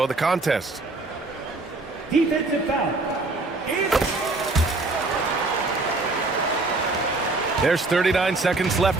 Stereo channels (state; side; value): quieter; left; 3.2 dB